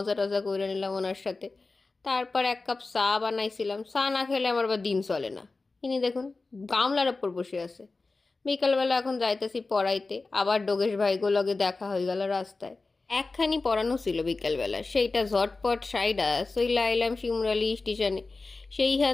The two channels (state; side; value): quieter; right; 3.7 dB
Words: টজা করে নিলাম ওনার সাথে। তারপর এক কাপ চা বানাইছিলাম, চা না খেলে আমার আবার দিন চলে না। ইনি দেখুন গামলার ওপর বসে আছে। বিকালবেলা এখন যাইতেছি পড়াইতে, আবার ডোগেশ ভাইগো লগে দেখা হয়ে গেল রাস্তায়। একখানি পড়ানো ছিল বিকালবেলা, সেইটা ঝটপট সাইডা চইলা আইলাম শিমুরালি স্টেশনে।